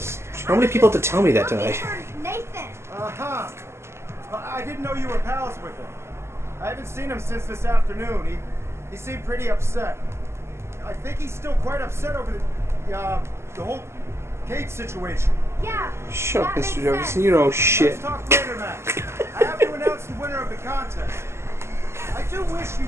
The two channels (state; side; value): late; left; 0.13 ms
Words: How many people have to tell me that Looking tonight? for Nathan. Uh-huh. I didn't know you were pals with him. I haven't seen him since this afternoon. He seemed pretty upset. I think he's still quite upset over the whole Kate situation. Yeah. Shut up, that makes Mr. Jefferson. sense. You know shit. Let's talk later, Max. I have to announce the winner of the contest. I do wish you